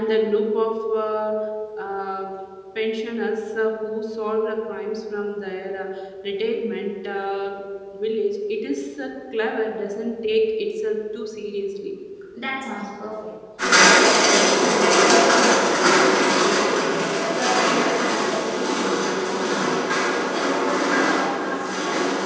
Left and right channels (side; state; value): both; identical; correlation 1.00